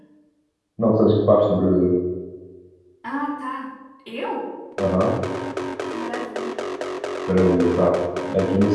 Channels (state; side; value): identical; both; correlation 1.00